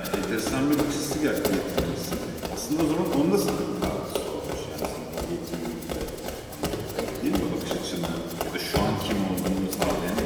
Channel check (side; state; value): both; identical; correlation 1.00